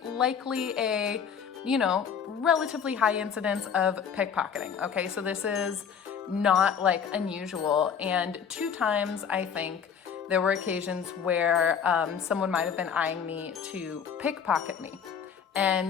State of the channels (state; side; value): quieter; right; 7.2 dB